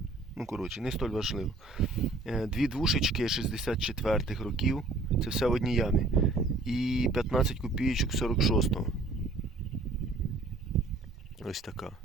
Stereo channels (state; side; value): quieter; left; 3.1 dB